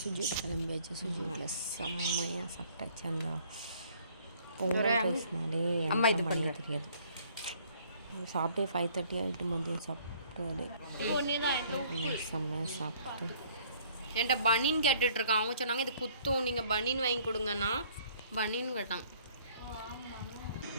சுஜிட்டு கிளம்பியாச்சு. சுஜிட்டில் செம்மையாக சாப்பிட்டாச்சு. அந்த பொங்கல் ரைஸ்னாலே எனக்கு பண்ண தெரியாது. சாப்பிட்டே 5:30 ஆகிட்டு. மதியம் சாப்பிட்டு செம்மையாக சாப்பிட்டு என்கிட்ட பனின்னு கேட்டுட்ருக்கான். அவங்க சொன்னாங்க இது குத்தும், நீங்கள் பனின்னு வாங்கி கொடுங்கண்ணா. பனின்னு கேட்டாங்க.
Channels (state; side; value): inverted; both; correlation -0.59